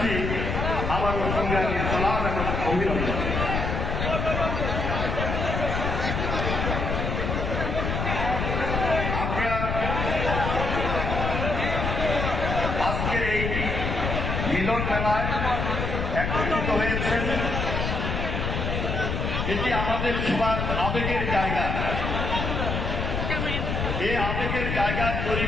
আবারও সংগ্রামী সালাম এবং অভিনন্দন। আপনারা আজকের এই মিলন মেলায় একত্রিত হয়েছেন, এটি আমাদের সবার আবেগের জায়গা। এই আবেগের জায়গা তৈরি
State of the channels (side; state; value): left; noise; rumble, 1 dB below the sound